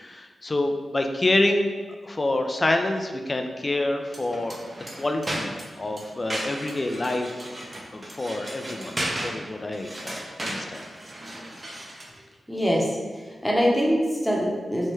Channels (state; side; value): normal; both; correlation 0.94